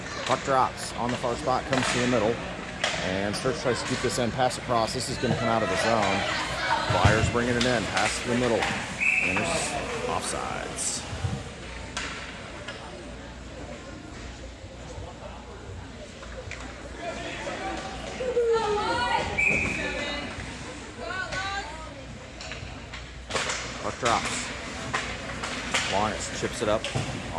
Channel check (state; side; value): identical; both; correlation 1.00